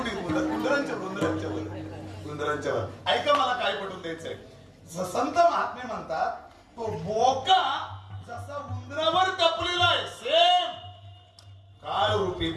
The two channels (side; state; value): both; identical; correlation 1.00